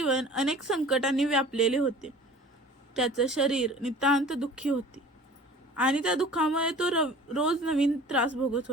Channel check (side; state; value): both; normal; correlation 0.44